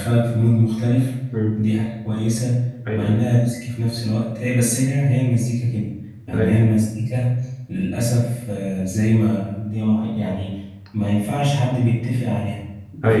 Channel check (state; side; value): identical; both; correlation 1.00